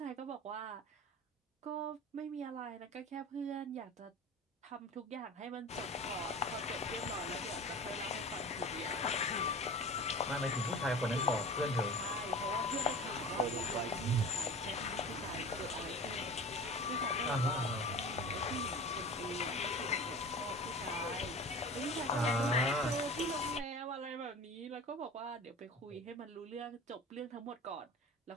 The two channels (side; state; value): both; normal; correlation 0.36